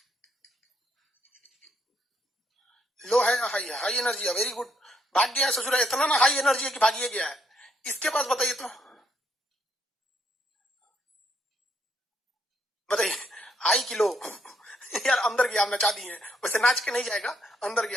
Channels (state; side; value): normal; both; correlation 0.72